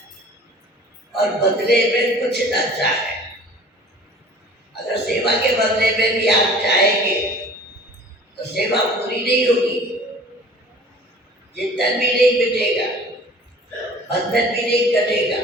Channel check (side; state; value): both; normal; correlation 0.46